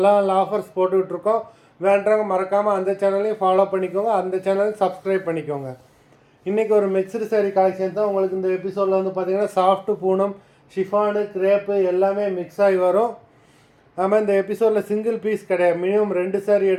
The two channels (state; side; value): identical; both; correlation 1.00